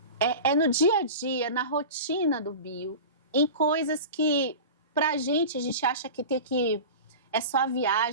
É no dia a dia, na rotina do Bill, em coisas que pra gente, a gente acha que é só a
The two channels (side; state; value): both; inverted; correlation -0.31